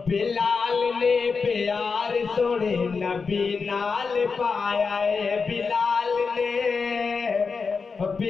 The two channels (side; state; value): right; quieter; 5.0 dB